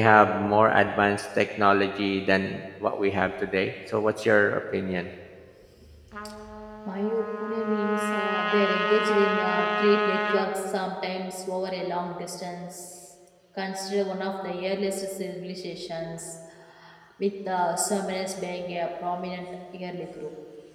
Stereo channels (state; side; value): identical; both; correlation 1.00